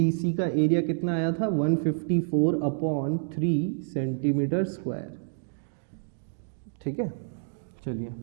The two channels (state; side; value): silent; left; digital silence